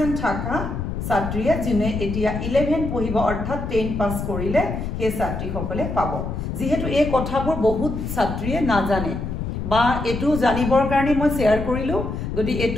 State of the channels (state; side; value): noise; left; rumble, 4 dB below the sound